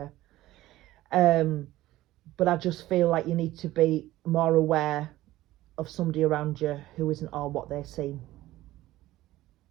But I just feel like you need to be more aware of somebody around you who isn't all what they seem.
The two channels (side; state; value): left; quieter; 16.1 dB